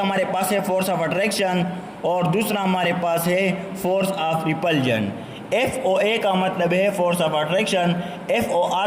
पास है फोर्स ऑफ अट्रैक्शन और दूसरा हमारे पास है फोर्स ऑफ रिपल्जन। FOA का मतलब है फोर्स ऑफ अट्रैक्शन,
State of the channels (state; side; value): identical; both; correlation 1.00